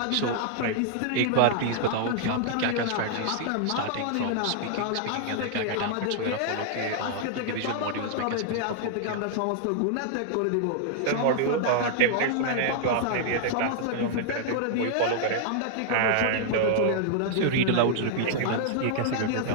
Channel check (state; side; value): different; both; correlation -0.01